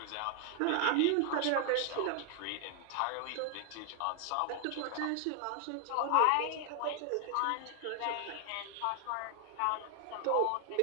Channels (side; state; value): both; different; correlation 0.00